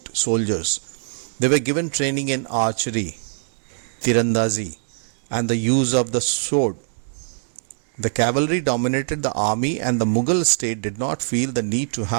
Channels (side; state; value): left; silent; digital silence